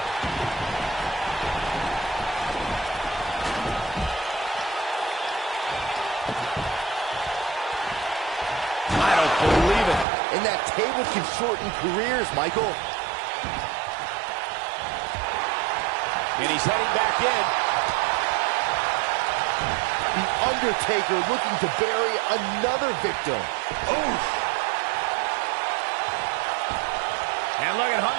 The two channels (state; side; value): drops out; left; at 10.1 s